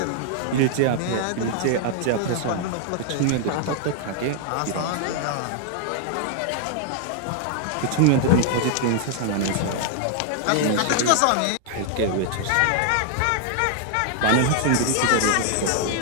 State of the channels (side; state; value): both; different; correlation 0.00